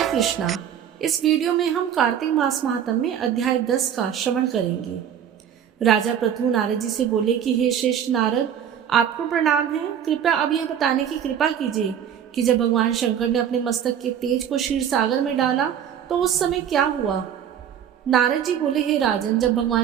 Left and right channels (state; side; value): quieter; left; 9.1 dB